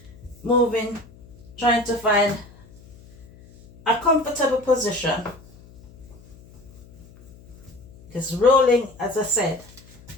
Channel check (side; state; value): left; noise; hum, 23 dB below the sound